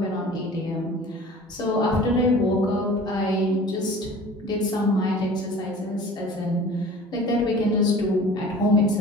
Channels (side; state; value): both; normal; correlation 0.43